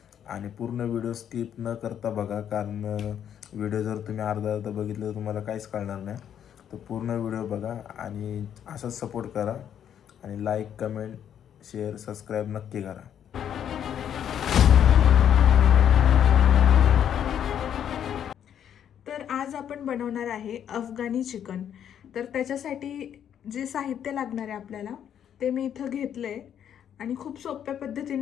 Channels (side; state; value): right; quieter; 9.3 dB